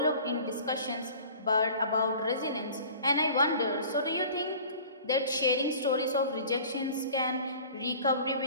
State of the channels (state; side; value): inverted; both; correlation -0.44